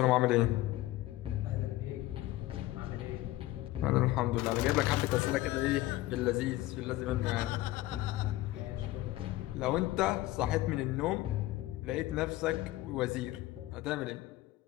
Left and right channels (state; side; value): quieter; right; 16.8 dB